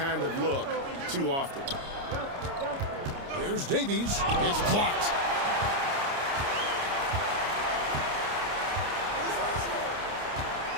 of look too often. Here's Davies. It's blocked.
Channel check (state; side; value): late; left; 29 ms